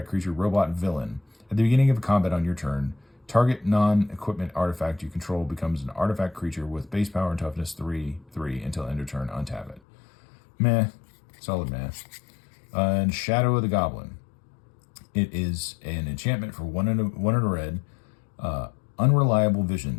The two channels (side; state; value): right; drops out; at 9.8 s